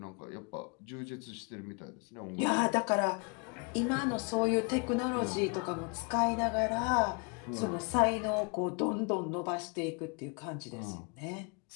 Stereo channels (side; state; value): right; quieter; 33.3 dB